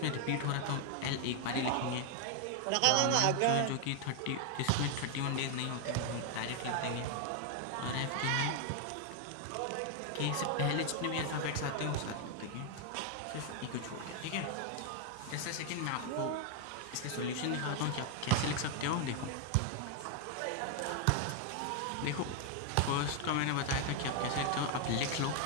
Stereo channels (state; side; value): different; both; correlation 0.00